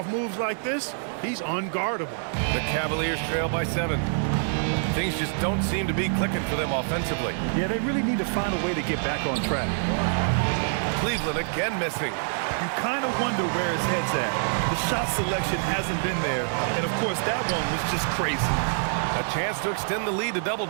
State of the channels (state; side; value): silent; left; 61 dB below the other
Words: moves like this, he's unguardable. The Cavaliers trail by 7. Things just don't seem to be clicking for them offensively. Yeah, they really need to find a way to get back on track. Cleveland again missing. You kind of wonder where his head's at. The shot selection hasn't been there, and of course that one was just crazy. A chance to extend the lead to double